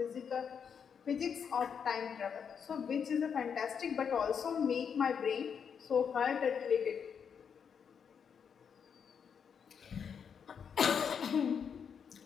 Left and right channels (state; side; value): quieter; right; 7.1 dB